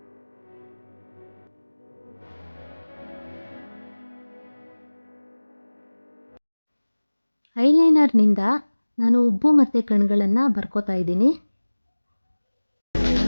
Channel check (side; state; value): both; inverted; correlation -1.00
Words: ಐಲೈನರ್ನಿಂದ ನಾನು ಉಬ್ಬು ಮತ್ತು ಕಣ್ಗಳನ್ನು ಬರ್ಕೋತಾ ಇದ್ದೀನಿ.